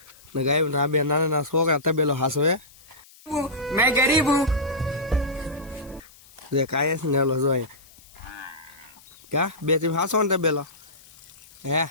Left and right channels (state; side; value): noise; left; hiss, 25 dB below the sound